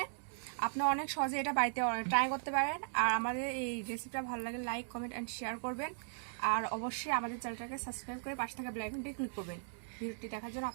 আপনি অনেক সহজে এটা বাড়িতে ট্রাই করতে পারেন। আর আমাদের এই রেসিপিটা ভালো লাগে লাইক কমেন্ট অ্যান্ড শেয়ার করবেন। আর অবশ্যই আমাদের চ্যানেলটাকে সাবস্ক্রাইব করে পাশে থাকা বেল আইকনটি ক্লিক করবেন। ভিডিওটি দেখার জন্য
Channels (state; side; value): silent; left; digital silence